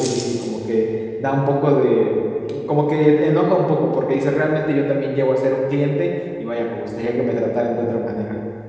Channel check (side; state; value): both; identical; correlation 1.00